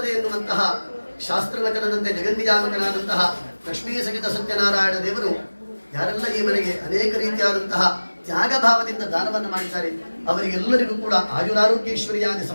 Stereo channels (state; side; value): inverted; both; correlation -1.00